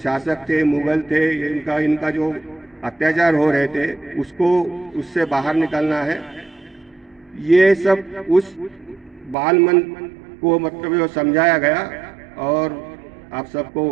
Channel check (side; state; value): left; drops out; at 9.3 s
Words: थे, मुगल थे, इनका जो अत्याचार हो रहे थे, उससे बाहर निकलना है। ये सब उस बाल मन को मतलब जो समझाया गया। और आप